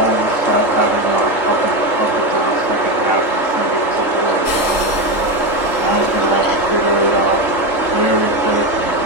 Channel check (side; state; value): right; late; 3.8 ms